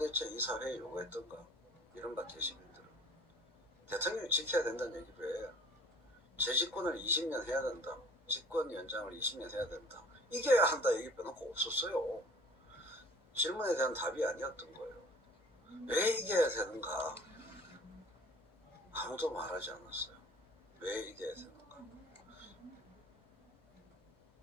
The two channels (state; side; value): normal; both; correlation 0.48